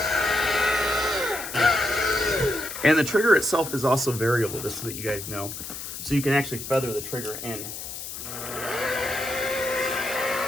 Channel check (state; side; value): noise; left; hiss, 8 dB below the sound